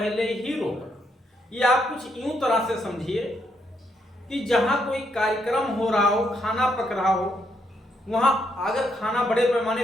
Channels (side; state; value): both; normal; correlation 0.76